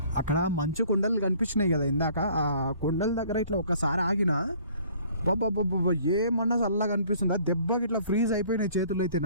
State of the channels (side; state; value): both; inverted; correlation -0.55